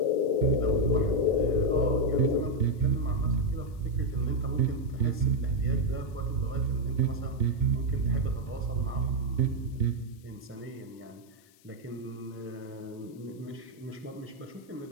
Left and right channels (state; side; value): noise; left; hiss, 29 dB below the sound